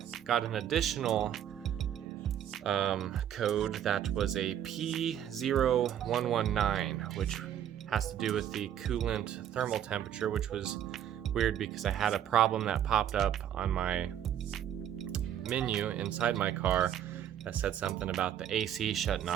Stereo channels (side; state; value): left; quieter; 10.2 dB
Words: got an additional code that was a P0119, which has to do with the coolant thermal temperature, which was weird because I had a problem that popped up on my menu inside my car that said something about the AC shutting